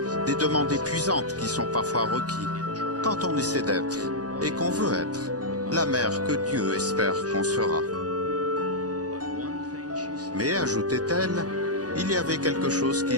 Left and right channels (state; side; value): late; left; 0.68 ms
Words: des demandes épuisantes qui sont parfois requis, quand on essaie d'être, et qu'on veut être, la mère que Dieu espère qu'on sera. Mais, ajoutait-elle, il y avait quelque chose qui